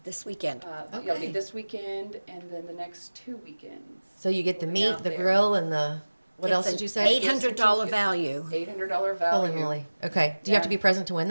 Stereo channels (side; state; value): both; inverted; correlation -1.00